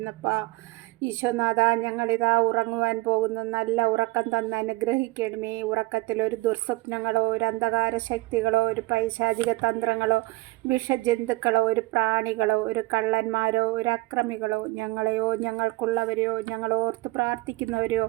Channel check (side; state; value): left; quieter; 21.1 dB